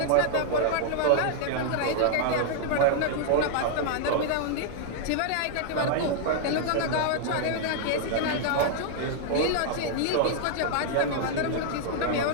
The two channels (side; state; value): both; different; correlation 0.00